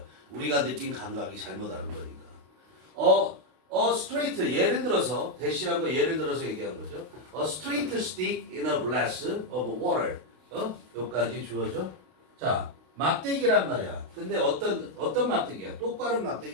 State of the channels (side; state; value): left; late; 32 ms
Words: 우리가 느낀 감각이 잘못하는 거니까. straight 예를 들어서 대시한 거 예를 들어서 얘기한 거죠. A straight stick in a glass of water. 여기까지 주어져. 자, 막대기란 말이야. 근데 어떤 막대기야? 똑바른